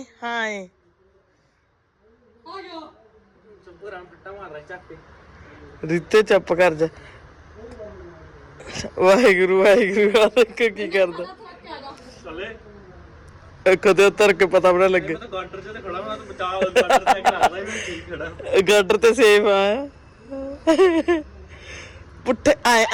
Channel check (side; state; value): both; identical; correlation 1.00